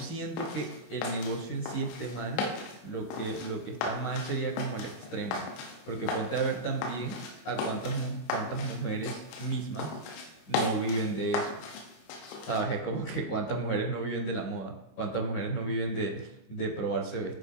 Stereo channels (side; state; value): right; late; 25 ms